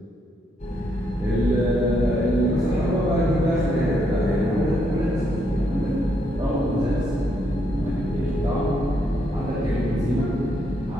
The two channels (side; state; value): both; normal; correlation 0.76